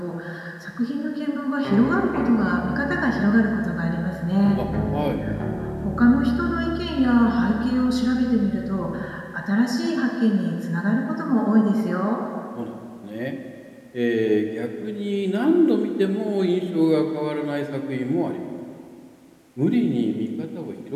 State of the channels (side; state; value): both; identical; correlation 1.00